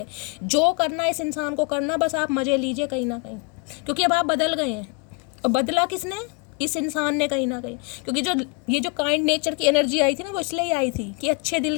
जो करना इस इंसान को करना, बस आप मज़े लीजिए कहीं ना कहीं, क्योंकि अब आप बदल गए हैं। और बदला किसने? इस इंसान ने कहीं ना कहीं, क्योंकि जो ये जो काइंड नेचर की एनर्जी आई थी ना, वो इसलिए ही आई थी कि अच्छे दिल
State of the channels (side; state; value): right; quieter; 31.9 dB